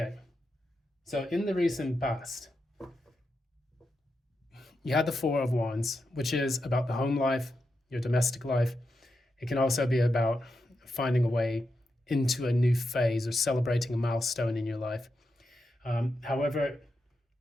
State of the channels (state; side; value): normal; both; correlation 0.86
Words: so in the recent past, you had the 4 of Wands, which is about the home life, your domestic life. It can also be about finding a way into a new phase or celebrating a milestone in your life. However,